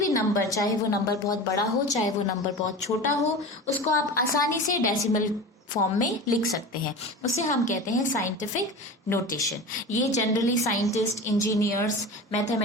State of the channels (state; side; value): normal; both; correlation 0.31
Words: नंबर, चाहे वो नंबर बहुत बड़ा हो चाहे वो नंबर बहुत छोटा हो, उसको आप आसानी से डेसिमल फॉर्म में लिख सकते हैं. उसे हम कहते हैं साइंटिफिक नोटेशन. ये जनरली साइंटिस्ट, इंजीनियर्स,